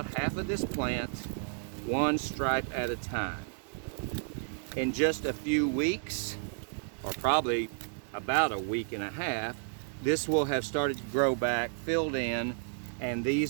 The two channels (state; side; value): silent; left; digital silence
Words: half of this plant, one stripe at a time. In just a few weeks, or probably about a week and a half, this will have started to grow back, filled in, and